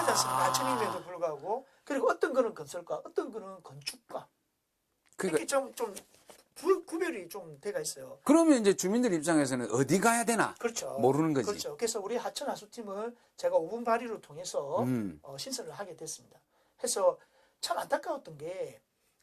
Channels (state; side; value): identical; both; correlation 1.00